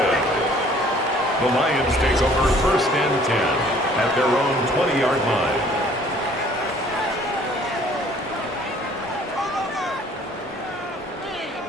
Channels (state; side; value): normal; both; correlation 0.56